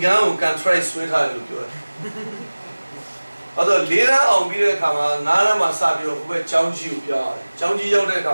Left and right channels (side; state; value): both; inverted; correlation -1.00